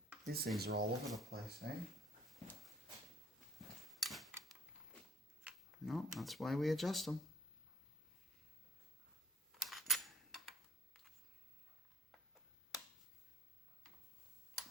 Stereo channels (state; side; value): normal; both; correlation 0.58